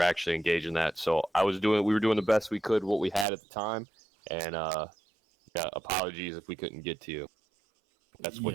actually engaging that. So we were doing the best we could, what we had at the time. And yeah, apologies if we couldn't get to you. That's what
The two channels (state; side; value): drops out; left; at 3.2 s